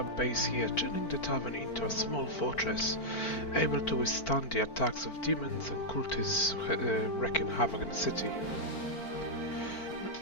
base here, turning the tavern into a small fortress, able to withstand the attacks of demons and cultists wreaking havoc in the city.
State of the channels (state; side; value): late; right; 4.5 ms